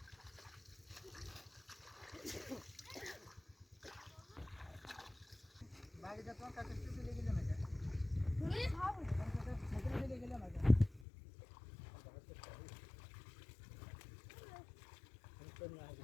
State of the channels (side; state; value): right; drops out; at 11.1 s